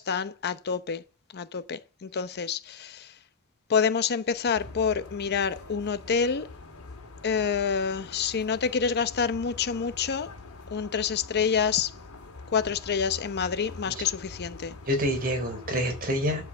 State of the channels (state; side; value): quieter; right; 5.0 dB